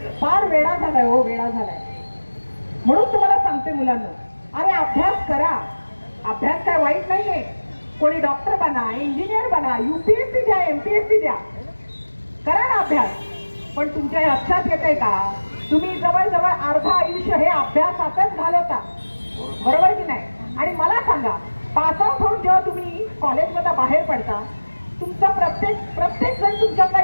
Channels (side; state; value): both; inverted; correlation -1.00